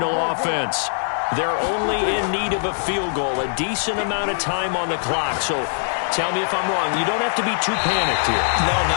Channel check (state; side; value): silent; right; digital silence